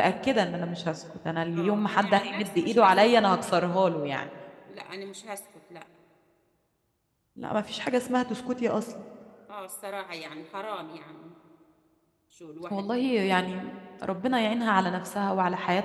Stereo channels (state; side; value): identical; both; correlation 1.00